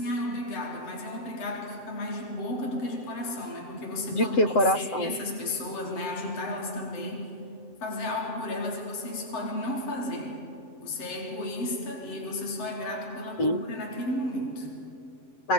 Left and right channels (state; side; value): late; right; 7.6 ms